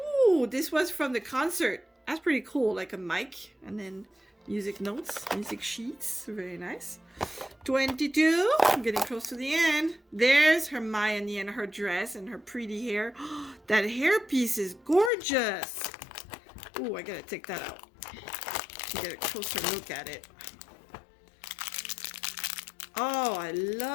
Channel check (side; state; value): right; drops out; at 15.1 s